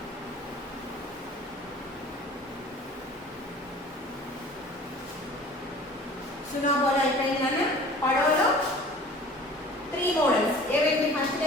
సునా బోలా అయిపోయిందన్నా. పడవలో 3 మోడల్స్ ఏవేంటి? ఫస్ట్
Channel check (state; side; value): normal; both; correlation 0.46